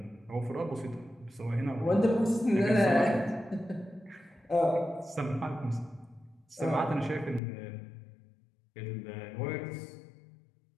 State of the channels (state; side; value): drops out; right; at 7.4 s